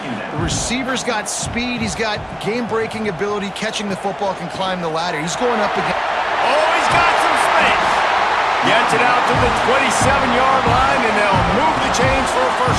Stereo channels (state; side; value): identical; both; correlation 1.00